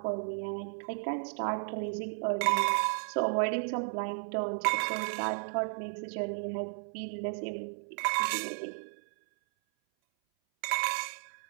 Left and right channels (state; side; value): silent; left; 55 dB below the other